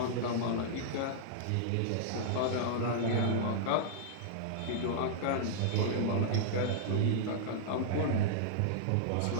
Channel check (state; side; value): different; both; correlation -0.01